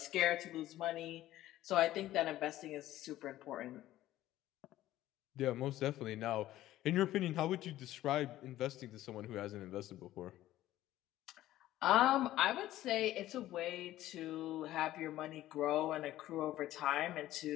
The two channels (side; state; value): right; quieter; 14.5 dB